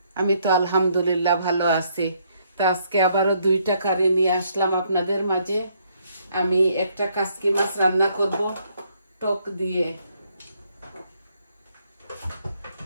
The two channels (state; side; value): inverted; both; correlation -0.70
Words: আমি তো আলহামদুলিল্লাহ ভালো আছি। তো আজকে আবারও দুইটা কারি নিয়ে আসলাম আপনাদের মাঝে। আমি একটা কাসকি মাছ রান্না করব টক দিয়ে,